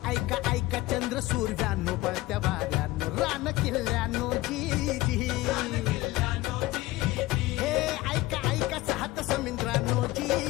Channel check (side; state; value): right; quieter; 18.4 dB